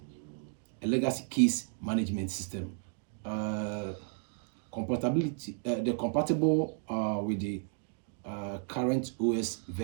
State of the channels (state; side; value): silent; left; 56 dB below the other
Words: legacy case management system. Compatible with the current OS